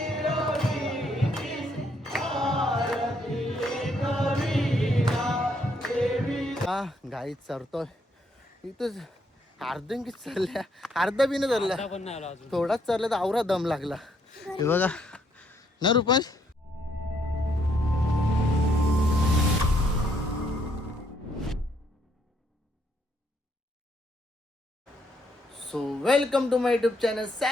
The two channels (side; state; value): both; normal; correlation 0.72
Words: गाईत चरतोय इथंच अर्धंकीच चालल्या अर्धा बी नाही चालला पण नाही आला अजून थोडाच चालला तर आवरा दम लागला हे बघा ना Rupansh so welcome to my YouTube channel